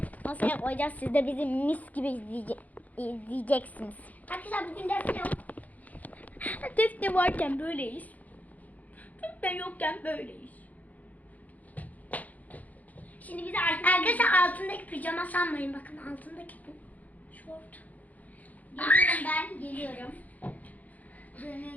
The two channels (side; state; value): right; late; 0.078 ms